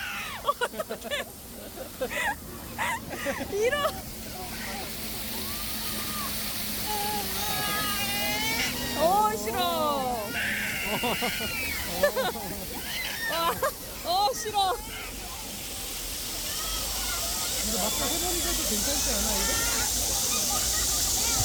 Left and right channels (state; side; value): identical; both; correlation 1.00